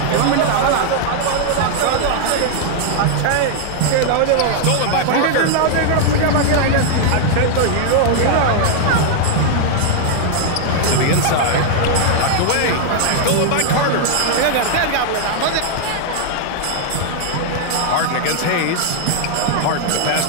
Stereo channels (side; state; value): both; different; correlation -0.01